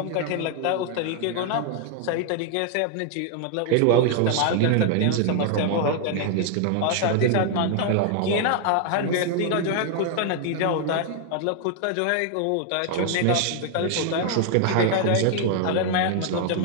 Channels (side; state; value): both; different; correlation 0.00